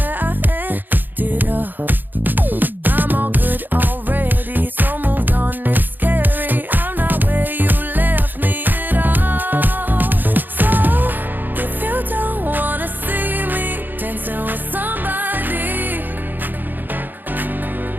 I ended up. I'm all good already, so moved on, it's scary. I'm not where you left me at all. So, if you don't wanna see me dancing with somebody,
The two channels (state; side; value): late; left; 0.089 ms